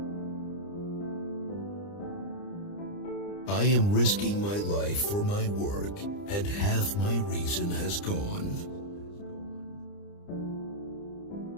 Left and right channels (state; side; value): late; right; 30 ms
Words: I am risking my life for my work, and half my reason has gone.